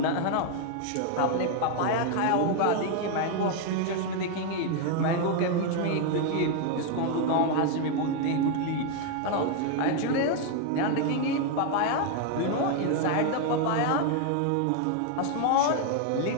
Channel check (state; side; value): different; both; correlation 0.01